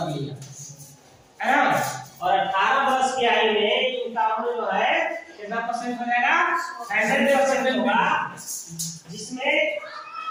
लिया है ना। और 18 वर्ष की आयु में इनका उम्र जो है कितना परसेंट हो जाएगा 100% होगा, जिसमें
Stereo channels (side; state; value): both; identical; correlation 1.00